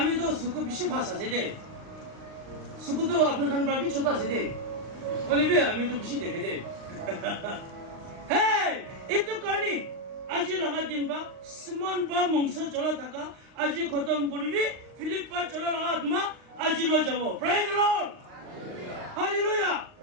তো সুখ বেশি ফাঁস আছে দে সুখ তো আপনার খান পাবি ছোট আছে দে বলিবি আমি তো বেশি দেখে দে হ্যাঁ একটু কারণে আজি লগা দিন বা সিমন বা মংস চলা থাকা আজি খতম করিবি ফিলিপ পা চলা লগা আত্মা আজি লো যাব প্রেজ দ্য লর্ড হালেলুয়া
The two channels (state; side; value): late; left; 39 ms